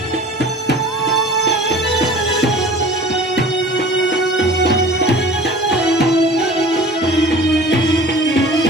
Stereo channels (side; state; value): both; normal; correlation 0.43